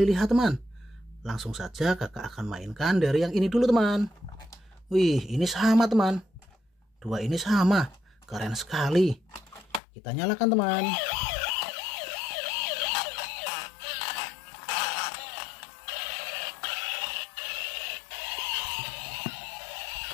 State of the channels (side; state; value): right; drops out; at 9.8 s